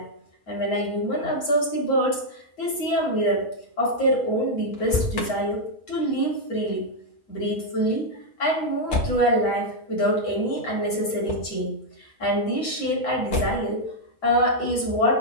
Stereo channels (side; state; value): right; late; 7.0 ms